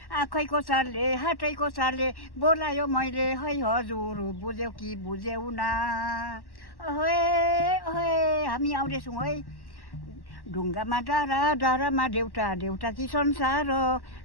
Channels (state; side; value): late; right; 1.1 ms